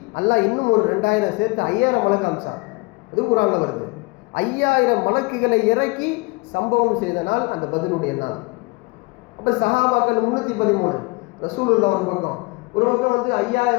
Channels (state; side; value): quieter; right; 26.7 dB